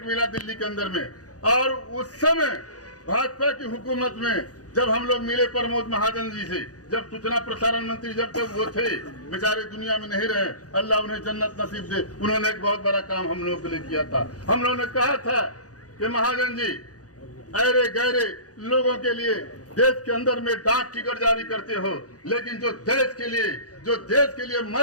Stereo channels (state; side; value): late; right; 0.67 ms